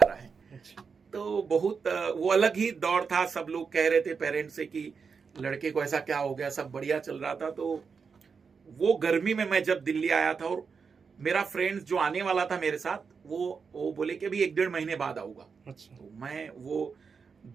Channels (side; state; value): left; quieter; 5.6 dB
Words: है। अच्छा। तो बहुत वो अलग ही दौर था। सब लोग कह रहे थे पेरेंट्स से कि लड़के को ऐसा क्या हो गया, सब बढ़िया चल रहा था। तो वो गर्मी में मैं जब दिल्ली आया था, और मेरा फ्रेंड जो आने वाला था मेरे साथ, वो बोले कि अभी 1-1.5 महीने बाद आऊंगा। अच्छा। तो मैं वो